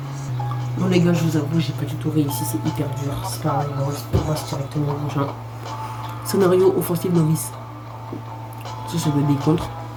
Bon, les gars, je vous avoue, j'ai pas du tout réussi. C'est hyper dur. C'est pas grave, on passe directement au prochain. Scénario offensif novice. Ça doit être des contres.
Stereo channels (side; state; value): both; identical; correlation 1.00